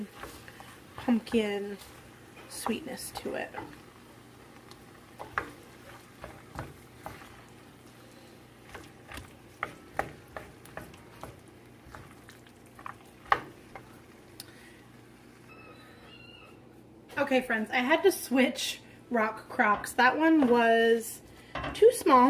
pumpkin sweetness to it. Okay, friends, I had to switch rock crocks. That one was too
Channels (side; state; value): both; identical; correlation 1.00